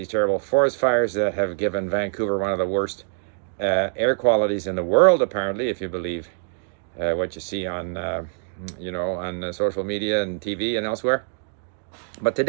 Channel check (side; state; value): left; silent; digital silence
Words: terrible forest fires that have given Vancouver one of the worst air qualities in the world, apparently, if you believe what you see on, on social media and TV and elsewhere. But